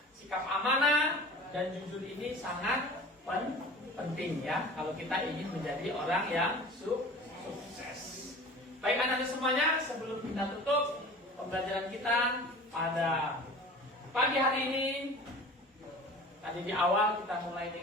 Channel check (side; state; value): both; normal; correlation 0.40